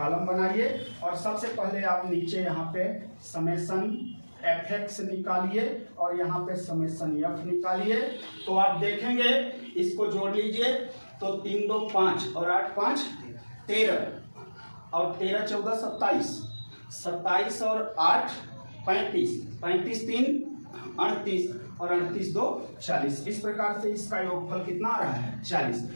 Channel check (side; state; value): both; inverted; correlation -1.00